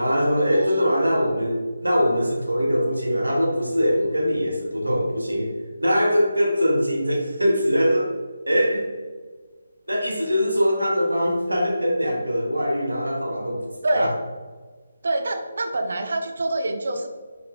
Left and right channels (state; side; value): inverted; both; correlation -0.91